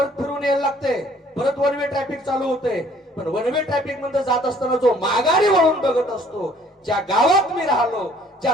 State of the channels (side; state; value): both; normal; correlation 0.58